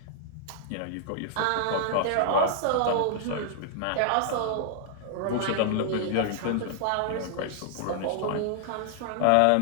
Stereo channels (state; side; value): different; both; correlation -0.01